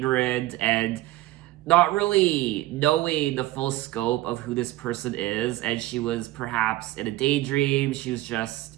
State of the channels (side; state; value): left; quieter; 16.8 dB